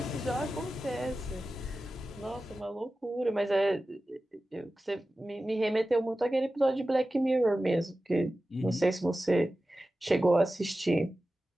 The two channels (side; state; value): both; normal; correlation 0.94